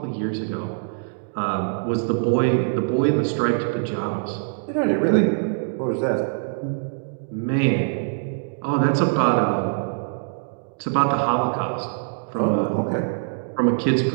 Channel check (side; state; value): left; silent; digital silence